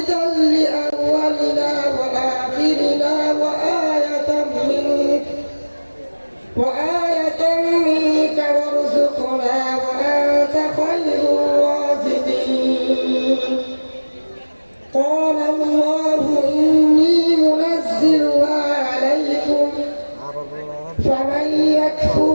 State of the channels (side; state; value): both; inverted; correlation -1.00